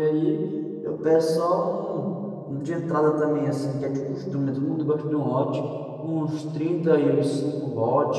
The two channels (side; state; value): both; identical; correlation 1.00